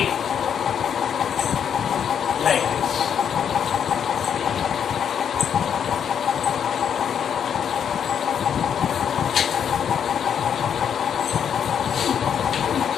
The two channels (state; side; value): quieter; right; 8.1 dB